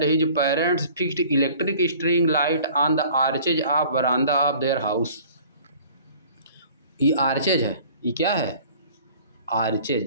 his parents fixed electric string light on the arches of veranda of their house. ये आर्चेज है, ये क्या है?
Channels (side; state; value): both; inverted; correlation -0.49